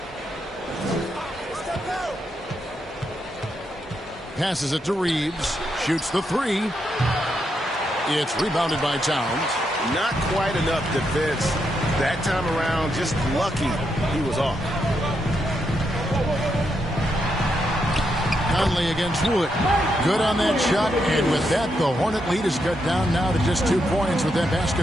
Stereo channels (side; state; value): both; normal; correlation 0.81